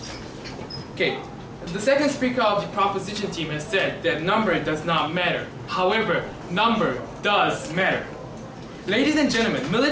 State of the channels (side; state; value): both; identical; correlation 1.00